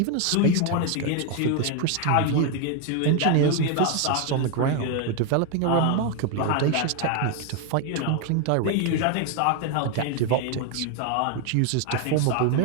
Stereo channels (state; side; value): different; both; correlation 0.01